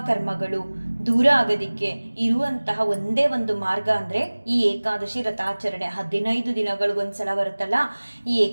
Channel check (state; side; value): inverted; both; correlation -1.00